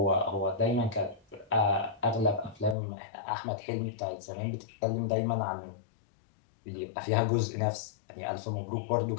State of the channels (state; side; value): drops out; right; at 2.8 s